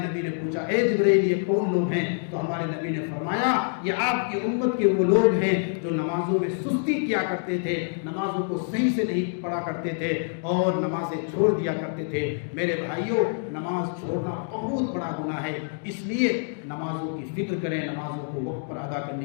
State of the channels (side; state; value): right; silent; digital silence